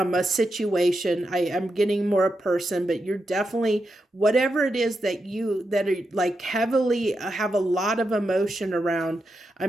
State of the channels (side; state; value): both; normal; correlation 0.86